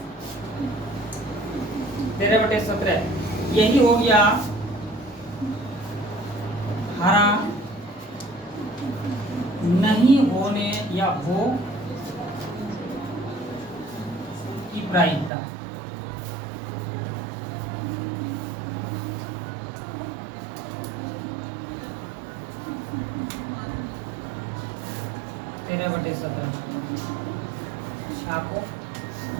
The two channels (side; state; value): left; drops out; at 15.3 s